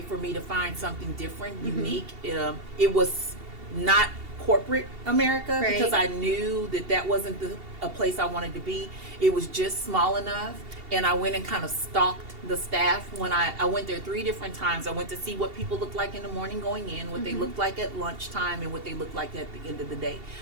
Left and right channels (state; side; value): late; left; 2.7 ms